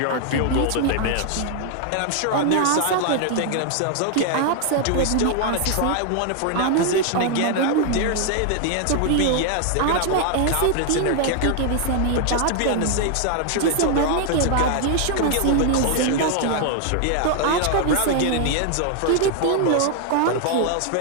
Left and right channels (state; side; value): different; both; correlation 0.00